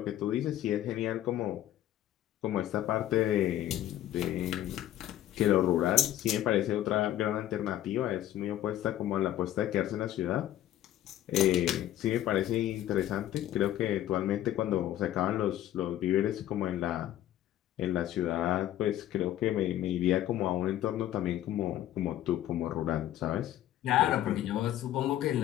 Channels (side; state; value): right; quieter; 12.8 dB